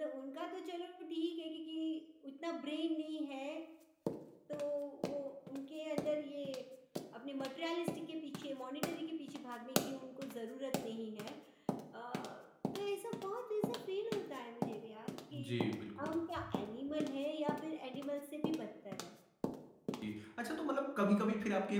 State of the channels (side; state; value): both; identical; correlation 1.00